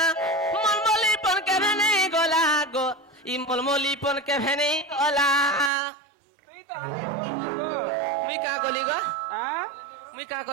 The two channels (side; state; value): left; drops out; at 5.7 s